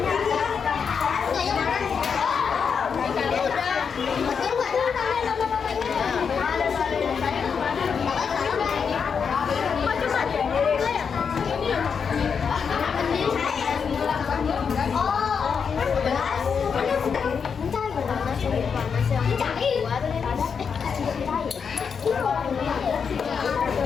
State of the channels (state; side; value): quieter; right; 6.3 dB